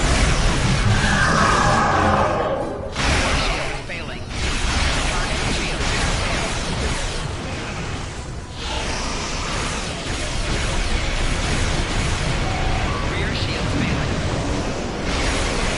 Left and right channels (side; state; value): both; identical; correlation 1.00